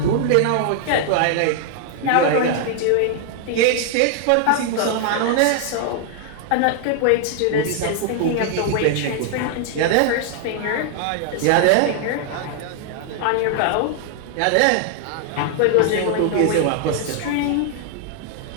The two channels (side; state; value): both; different; correlation 0.00